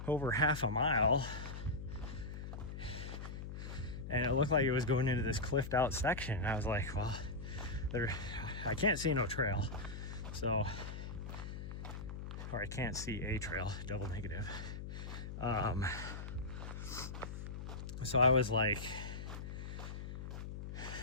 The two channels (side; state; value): left; noise; hum, 7 dB below the sound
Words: over half a mile, and it looked like it was going into this cliffed out section, and I was like, well, I can't see no trail, so, or I can't see a trail, double negative. So I was like,